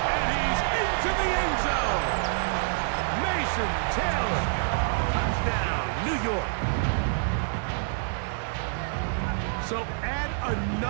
he's into the end zone. Mason Taylor. Touchdown, New York. So add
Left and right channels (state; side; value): silent; left; 60 dB below the other